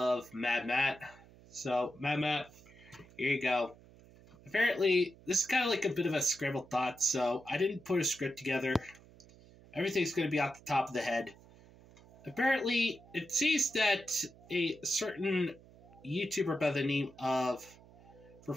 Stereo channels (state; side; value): noise; right; hum, 23 dB below the sound